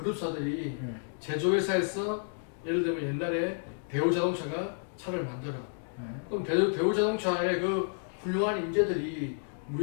네. 제조회사에서 예를 들면 옛날에 대우자동차가 차를 만들어. 네. 그럼 대우자동차의 그 훌륭한 인재들이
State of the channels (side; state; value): right; silent; digital silence